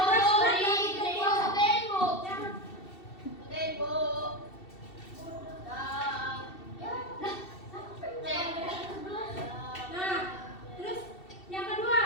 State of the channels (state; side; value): late; right; 2.7 ms